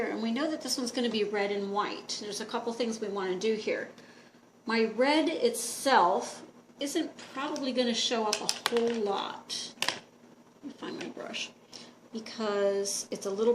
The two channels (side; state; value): both; identical; correlation 1.00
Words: and we know that this one's going to be red and white. There's a couple things we want to do here. My red itself isn't probably going to show up a whole lot. Let me find my brush. Because it's a little